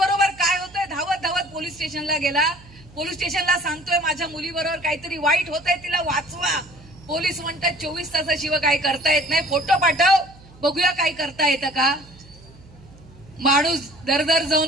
काय होतंय. धावत पोलीस स्टेशनला गेला. पोलीस स्टेशनला सांगतोय, माझ्या मुलीबरोबर काहीतरी वाईट होतंय, तिला वाचवा. पोलीस म्हणतात 24 तासाशिवाय काय करता येत नाही, फोटो पाठव, बघूया काय करता येतं का. माणूस दरदर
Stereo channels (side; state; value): right; noise; hum, 23 dB below the sound